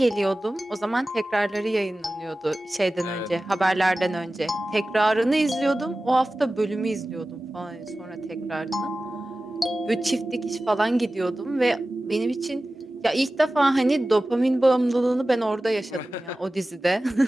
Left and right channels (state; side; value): normal; both; correlation 0.96